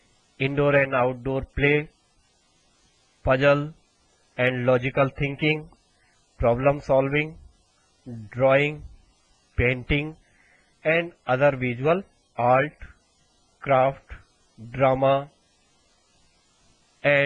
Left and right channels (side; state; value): both; identical; correlation 1.00